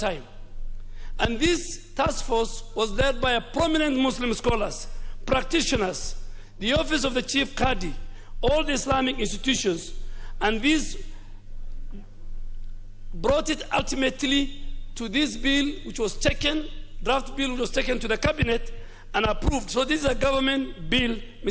And this task force was led by a prominent Muslim scholars, practitioners, the office of the chief Qadi, all the Islamic institutions, and this brought it ultimately to this bill which was taken, draft bill which was taken to the cabinet and approved. So this is a government bill,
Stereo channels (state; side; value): identical; both; correlation 1.00